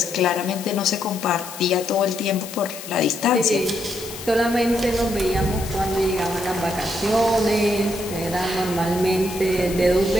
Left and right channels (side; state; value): left; noise; hiss, 12 dB below the sound